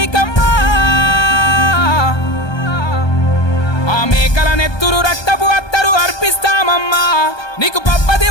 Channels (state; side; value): late; right; 1.2 ms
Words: ఆ మేకల నెత్తురు రక్తపు అత్తరు అర్పిస్తామమ్మా నీకు పప్పది